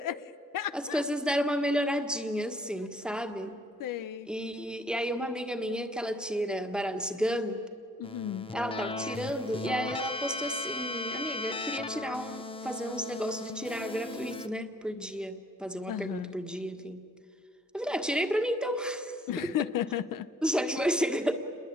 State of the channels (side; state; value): both; normal; correlation 0.60